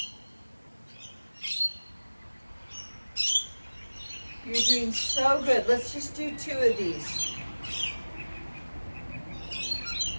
You're doing so good. Let's just do 2 of these.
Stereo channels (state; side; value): inverted; both; correlation -1.00